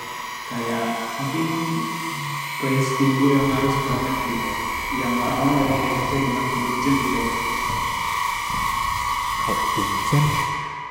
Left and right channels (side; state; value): both; identical; correlation 1.00